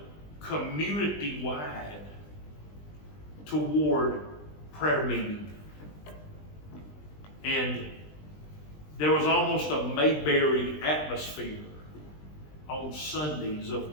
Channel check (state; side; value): late; right; 20 ms